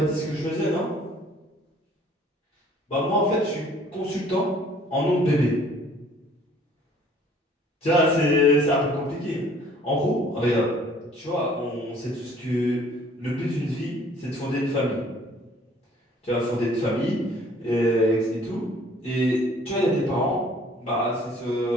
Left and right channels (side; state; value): both; normal; correlation 0.56